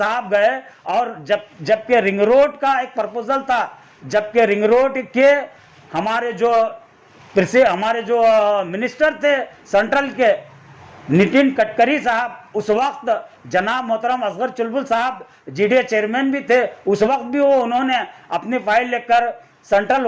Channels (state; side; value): identical; both; correlation 1.00